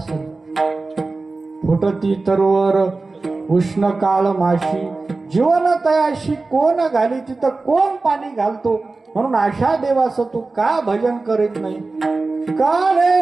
फुटती तरवर उष्ण काळ माशी, जीवन तयाशी कोण घाली, तिथं कोण पाणी घालतो? म्हणून अशा देवाचं तू का भजन करीत नाही? काळे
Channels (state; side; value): quieter; left; 3.6 dB